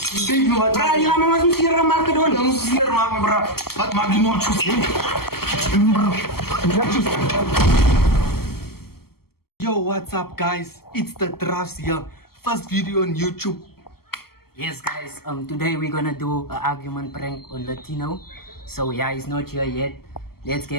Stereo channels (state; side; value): late; right; 0.95 ms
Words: Kijk me wat. Bra, ja, maar masuk sirah maken Dan doen. moest je hier maken, bro. Wat maak je nou tjus, hè? Bro. Yo, what's up, guys? It's the Drafts here. First video on YouTube. Yes, guys. Today we're gonna do an argument prank on Latino. So yeah, he's not here yet. Let's